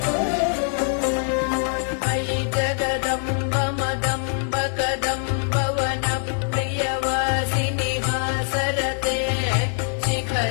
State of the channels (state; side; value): silent; right; 63 dB below the other